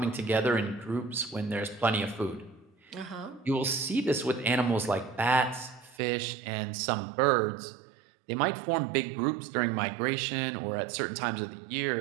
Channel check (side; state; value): left; drops out; at 6.0 s